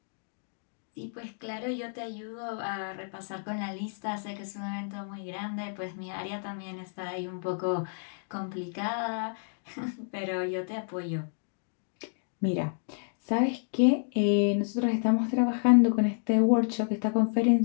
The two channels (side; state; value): right; silent; digital silence